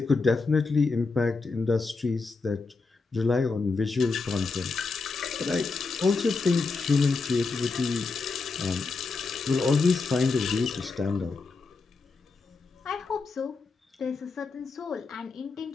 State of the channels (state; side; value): quieter; right; 4.2 dB